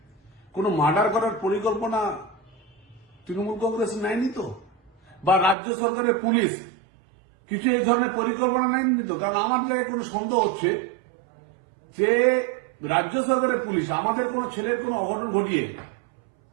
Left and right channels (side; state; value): left; drops out; at 5.6 s